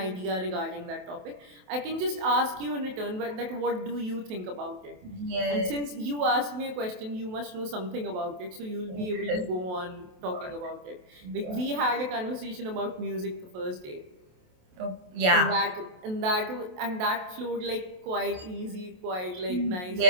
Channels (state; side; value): late; left; 28 ms